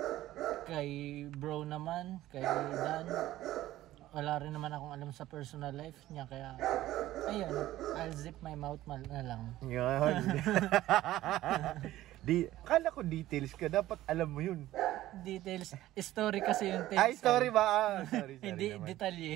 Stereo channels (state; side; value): quieter; left; 14.9 dB